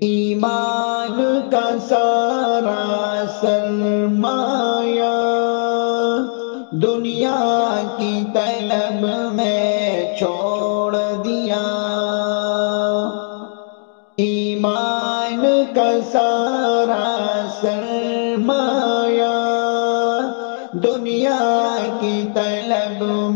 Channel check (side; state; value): right; silent; digital silence